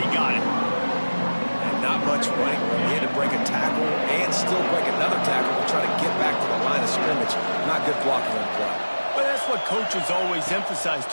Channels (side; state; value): both; inverted; correlation -1.00